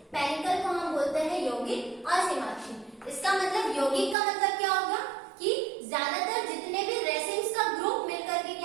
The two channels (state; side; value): drops out; left; at 4.2 s